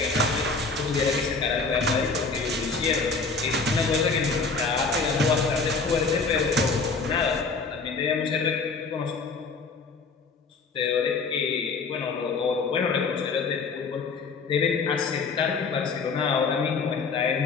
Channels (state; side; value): quieter; right; 4.4 dB